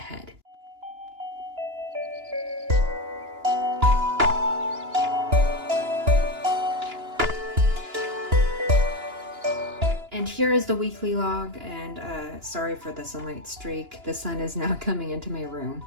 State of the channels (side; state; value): left; late; 2.9 ms